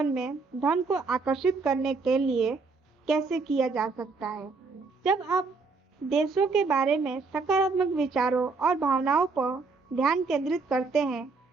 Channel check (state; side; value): quieter; left; 4.2 dB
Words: में धन को आकर्षित करने के लिए कैसे किया जा सकता है। जब आप देशों के बारे में सकारात्मक विचारों और भावनाओं पर ध्यान केंद्रित करते हैं,